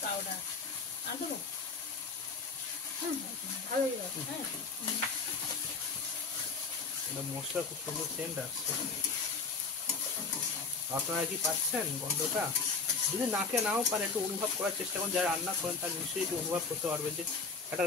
পাউডার আর দেবো। ভালো হয়ে যাবে। হ্যাঁ এটা মশলা খুব সুন্দর সেন্ট আসছে। আপনারা কি পাচ্ছেন গন্ধটা? যদি নাকে নাও পারে একটু অনুভব করার চেষ্টা করুন। যারা রান্না করেন তারা নিশ্চয়ই একটু অনুভব করতে পারবেন যে একটা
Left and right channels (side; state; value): right; quieter; 4.6 dB